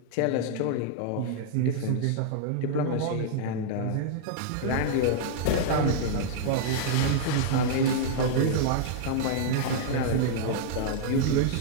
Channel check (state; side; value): different; both; correlation -0.01